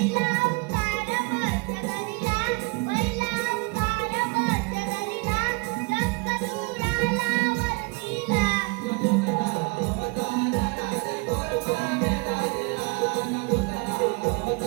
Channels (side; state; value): left; quieter; 27.5 dB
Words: अवतार मध्यधरीला, पहिला अवतार मध्यधरीला, जगदुराला वरतीला. दुसरा